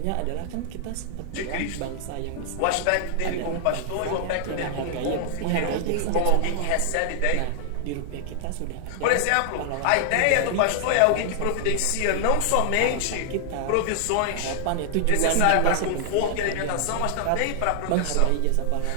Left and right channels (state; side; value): different; both; correlation 0.00